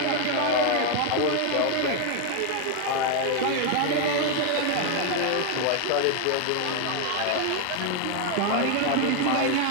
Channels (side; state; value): both; different; correlation 0.01